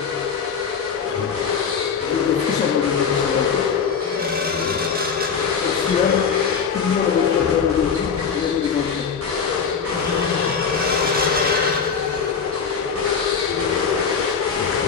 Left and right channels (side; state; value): right; quieter; 6.3 dB